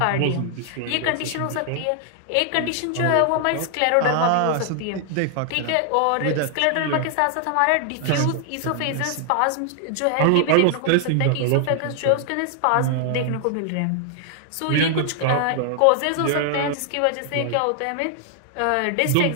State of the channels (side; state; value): both; different; correlation 0.00